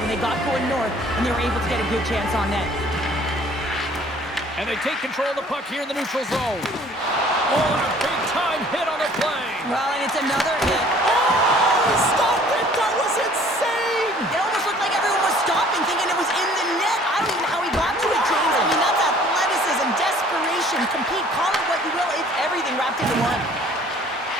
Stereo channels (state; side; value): normal; both; correlation 0.54